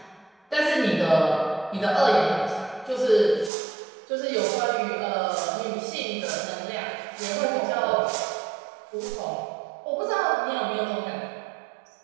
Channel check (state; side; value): drops out; left; at 3.5 s